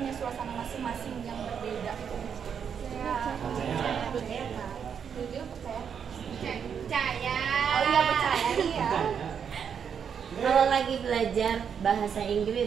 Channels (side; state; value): left; quieter; 7.4 dB